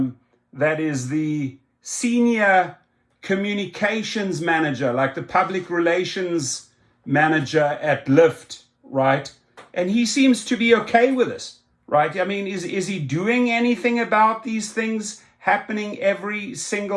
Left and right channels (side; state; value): both; identical; correlation 1.00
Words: is the senior communications manager, like the public relations manager at Lyft, right? And he seems to be okay with this, right? I mean, is he doing anything about these things happening every